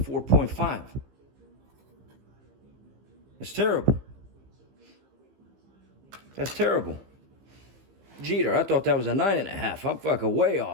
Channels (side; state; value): left; late; 15 ms